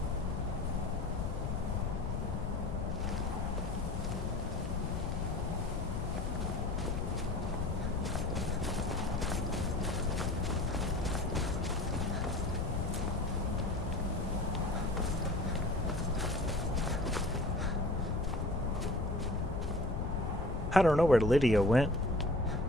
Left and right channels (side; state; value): left; noise; rumble, 2 dB below the sound